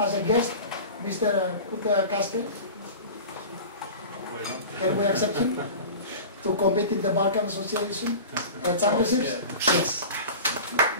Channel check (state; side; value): inverted; both; correlation -0.34